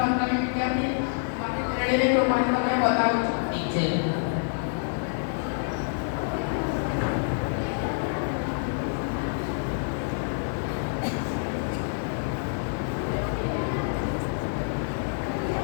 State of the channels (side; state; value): right; silent; digital silence